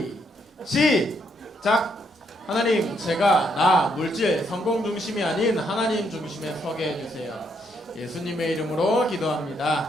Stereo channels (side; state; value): both; normal; correlation 0.74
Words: 시작! 하나님, 제가 나 물질, 성공 중심이 아닌 하나님 중심에 서게 해주세요. 예수님의 이름으로